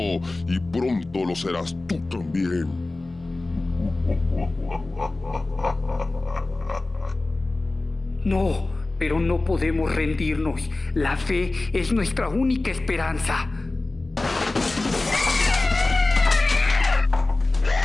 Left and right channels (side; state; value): right; quieter; 3.0 dB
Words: y pronto lo serás tú también. No, pero no podemos rendirnos. La fe es nuestra única esperanza.